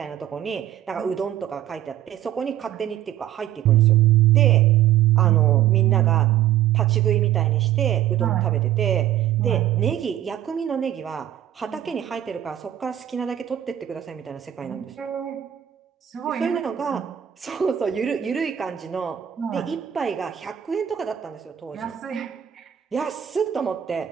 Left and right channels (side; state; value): left; quieter; 11.6 dB